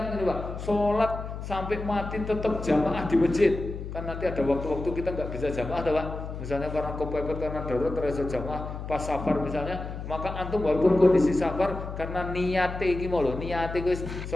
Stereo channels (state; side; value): noise; left; hum, 8 dB below the sound